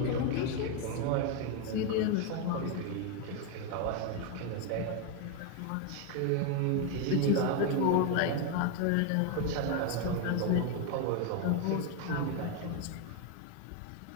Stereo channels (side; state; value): both; different; correlation 0.01